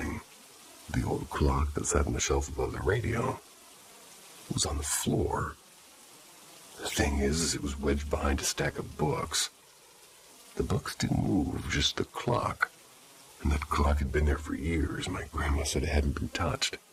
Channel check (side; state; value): both; identical; correlation 1.00